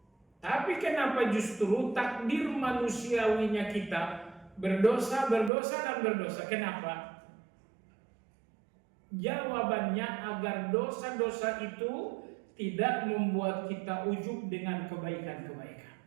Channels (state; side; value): drops out; left; at 5.5 s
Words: Tapi kenapa justru takdir manusiawinya kita berdosa, dan berdosa? Kenapa? Jawabannya agar dosa-dosa itu tidak membuat kita ujub dengan kebaikan-kebaikan.